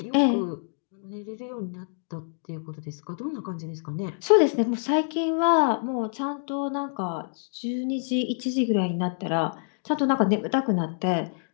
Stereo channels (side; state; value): right; silent; digital silence